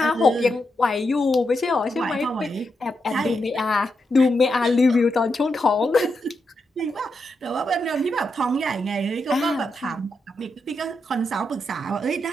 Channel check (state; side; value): normal; both; correlation 0.84